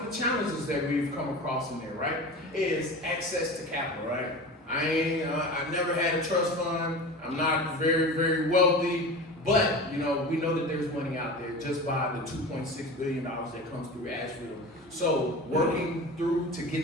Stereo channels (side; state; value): both; normal; correlation 0.32